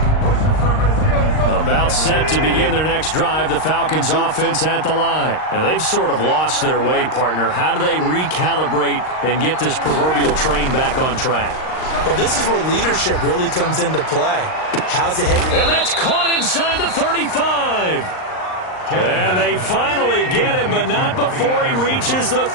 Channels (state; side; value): late; right; 38 ms